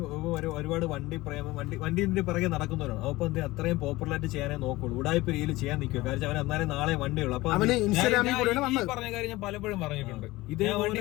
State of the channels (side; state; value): right; quieter; 19.4 dB